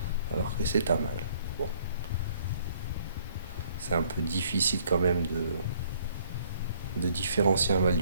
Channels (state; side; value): inverted; both; correlation -0.62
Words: alors que c'est un mâle. Bon, c'est un peu difficile quand même de différencier un mâle